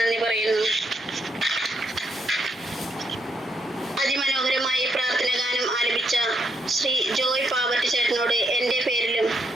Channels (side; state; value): both; normal; correlation 0.77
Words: പറയുന്നു. അതിമനോഹരമായി പ്രാർത്ഥന ഗാനം ആലപിച്ച ശ്രീ ജോയ് പാവർട്ടി ചേട്ടനോട് എൻ്റെ പേരിലും